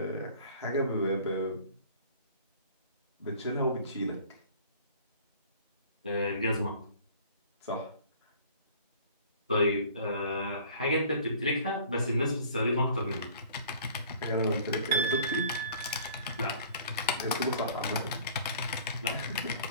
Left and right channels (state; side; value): inverted; both; correlation -0.49